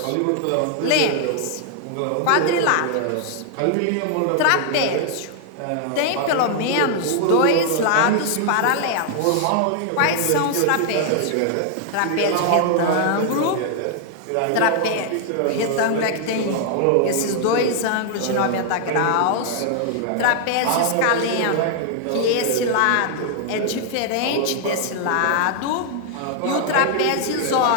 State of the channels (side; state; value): both; different; correlation 0.00